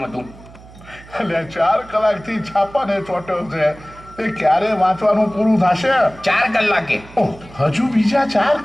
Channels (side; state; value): right; noise; hum, 21 dB below the sound